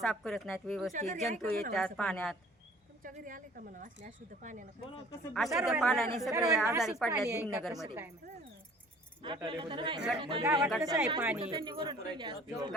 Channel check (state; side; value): normal; both; correlation 0.51